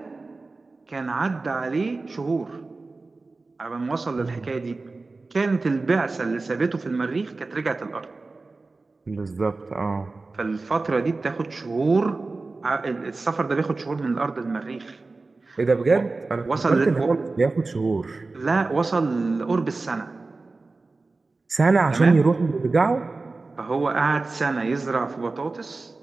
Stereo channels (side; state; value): left; quieter; 3.6 dB